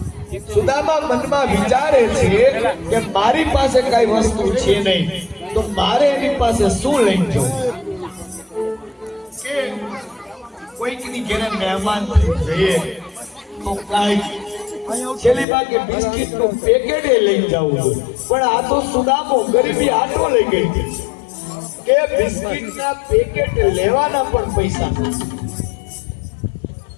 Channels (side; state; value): right; drops out; at 15.5 s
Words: સુદામા મનમાં વિચારે છે કે મારી પાસે કઈ વસ્તુ છે નહીં, તો મારે એની પાસે શું લઈને જવું? કે કોઈકની ઘરે મહેમાન જઈએ તો કઈ છેલ્લી ભાગે બિસ્કિટ નું પેકેટ લઈ જવું, પણ આ તો સુદામો ગરીબી આટો લઈ ગઈ કે બિસ્કિટ ના પેકેટ લેવાના પણ પૈસા.